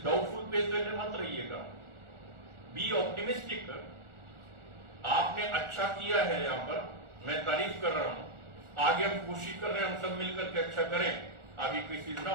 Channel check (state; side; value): late; left; 1.4 ms